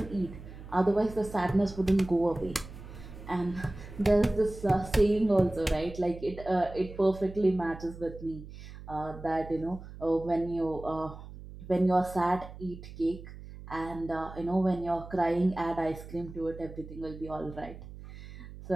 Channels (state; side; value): noise; right; hum, 14 dB below the sound